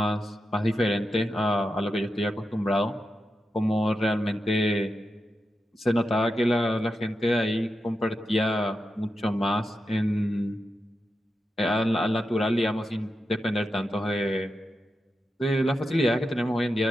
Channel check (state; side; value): normal; both; correlation 0.88